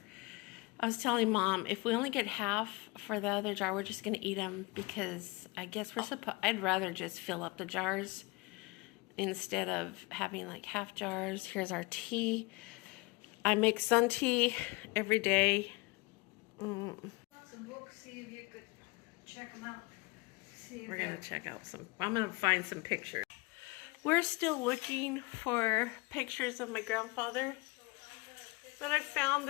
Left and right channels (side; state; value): right; quieter; 24.3 dB